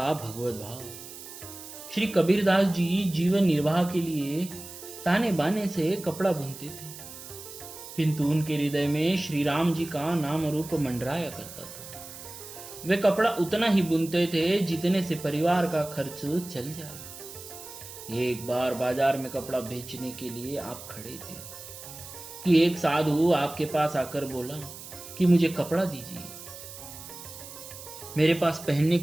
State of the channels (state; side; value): noise; right; hiss, 14 dB below the sound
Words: भगवत भाव। श्री कबीरदास जी जीवन निर्वाह के लिए ताने बाने से कपड़ा बुनते थे, किंतु उनके हृदय में श्री राम जी का नाम रूप मंडराया करता था। वे कपड़ा उतना ही बुनते थे जितने से परिवार का खर्च चल जाए। एक बार बाजार में कपड़ा बेचने के लिए आप खड़े थे कि एक साधु आपके पास आकर बोला कि मुझे कपड़ा दीजिए, मेरे पास पहनने